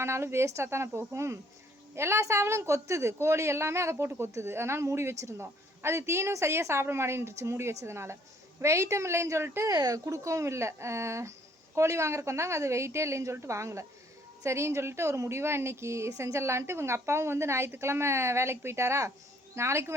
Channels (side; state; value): both; normal; correlation 0.62